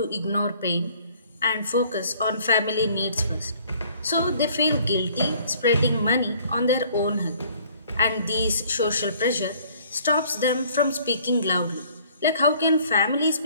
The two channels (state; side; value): inverted; both; correlation -0.57